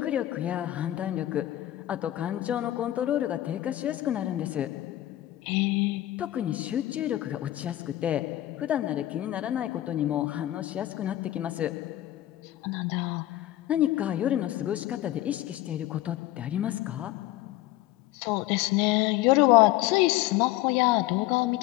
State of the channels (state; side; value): quieter; right; 14.8 dB